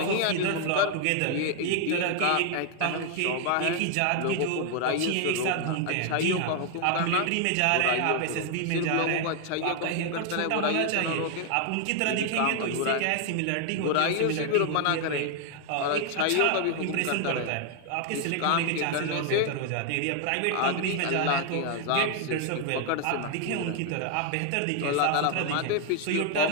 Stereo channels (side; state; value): both; different; correlation 0.00